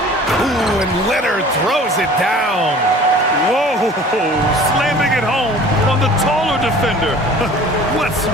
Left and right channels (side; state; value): both; normal; correlation 0.46